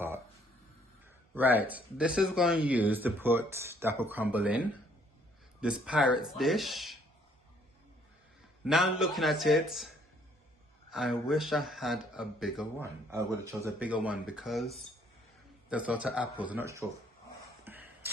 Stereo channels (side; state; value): both; normal; correlation 0.64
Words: Right, this is going to use to put the apple crumble in. This pirate's dish. Now looking at it, I wish I had a bigger one. I would have chosen a bigger one because there's lots of apples. I'm not sure